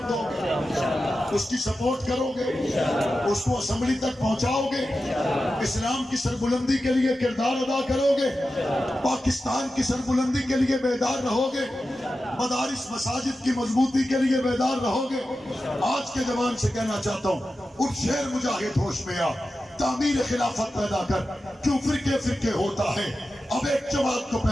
دو گے؟ اس کی سپورٹ کرو گے؟ اس کو اسمبلی تک پہنچاؤ گے؟ اسلام کی سربلندی کے لیے کردار ادا کرو گے؟ پاکستان کی سربلندی کے لیے بیدار رہو گے؟ مدارس مساجد کی مضبوطی کے لیے بیدار رہو گے؟ آج کے جوان سے کہنا چاہتا ہوں، اٹھ شیر مجاہد ہوش میں آ، تعمیر خلافت پیدا کر، کیوں فرقے ہوتا ہے، اب ایک جماعت کو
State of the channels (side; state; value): both; normal; correlation 0.92